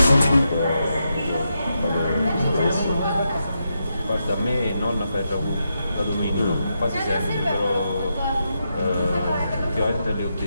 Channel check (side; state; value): both; inverted; correlation -0.84